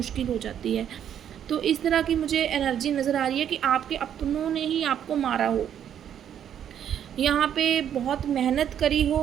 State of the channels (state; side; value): quieter; left; 9.5 dB